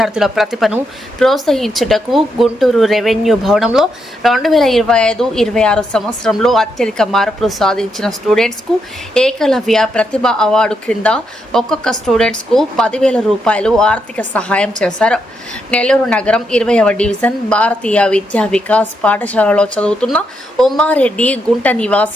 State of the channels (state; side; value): normal; both; correlation 0.80